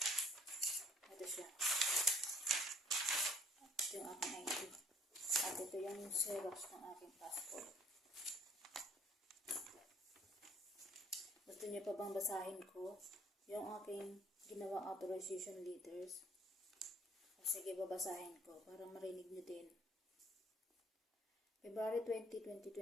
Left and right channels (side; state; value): both; normal; correlation 0.58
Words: Ito siya. Ito yung aking ID. At ito yung xerox ng aking passport. Gusto niyo pa bang basahin ko yung aking ginawang authorization letters? Sige, babasahin ko para marinig niyo din. February 20,